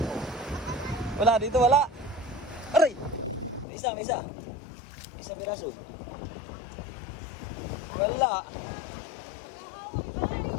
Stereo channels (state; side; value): drops out; right; at 3.7 s